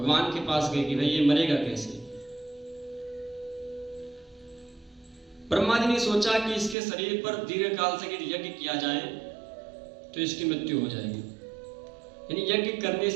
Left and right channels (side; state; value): left; drops out; at 6.8 s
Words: के पास गए कि भाई ये मरेगा कैसे। ब्रह्मा जी ने सोचा कि इसके शरीर पर दीर्घ काल से यज्ञ किया जाए तो इसकी मृत्यु हो जाएगी, यानी यज्ञ करने